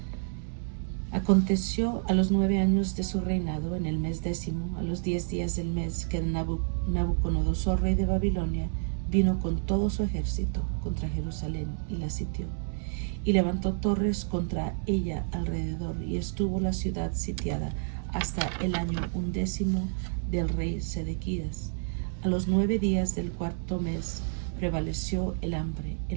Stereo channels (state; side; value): silent; left; digital silence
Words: Aconteció a los 9 años de su reinado, en el mes 10, a los 10 días del mes, que Nabucodonosor, rey de Babilonia, vino con todo su ejército contra Jerusalén y la sitió, y levantó torres contra ella alrededor, y estuvo la ciudad sitiada hasta el año 11 del rey Sedequías. A los 9 días del 4º mes prevaleció el hambre